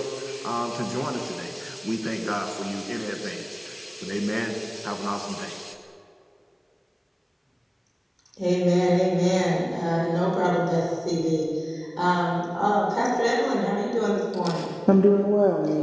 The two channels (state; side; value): identical; both; correlation 1.00